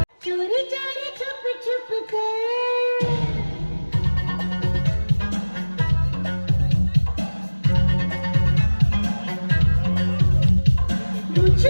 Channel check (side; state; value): both; inverted; correlation -1.00